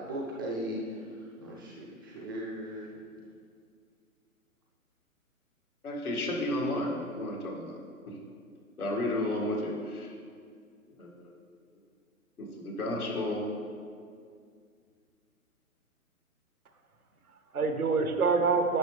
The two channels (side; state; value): both; normal; correlation 0.29